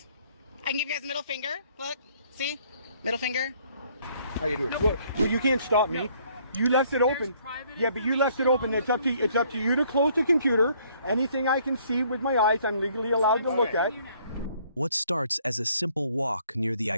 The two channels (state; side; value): inverted; both; correlation -0.63